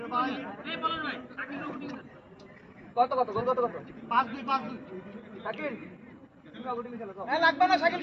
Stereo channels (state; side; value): identical; both; correlation 1.00